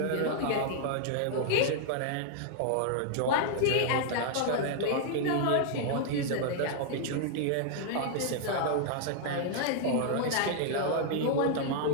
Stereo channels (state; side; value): different; both; correlation -0.01